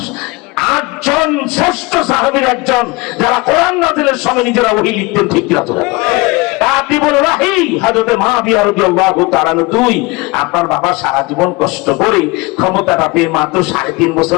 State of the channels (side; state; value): right; quieter; 24.4 dB